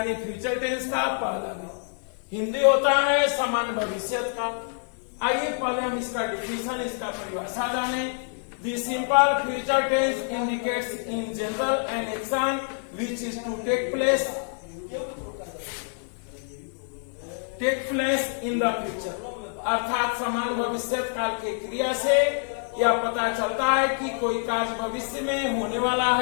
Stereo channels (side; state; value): right; silent; 56 dB below the other